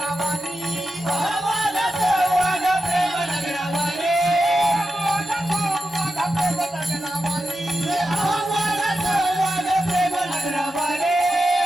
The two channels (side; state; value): both; normal; correlation 0.89